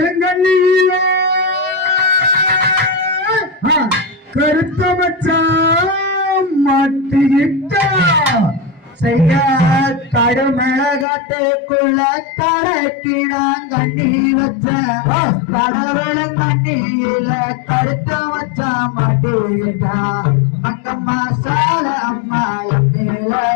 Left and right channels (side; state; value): right; drops out; at 11.1 s